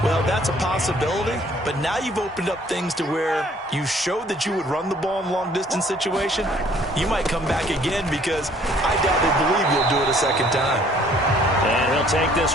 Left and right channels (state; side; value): normal; both; correlation 0.59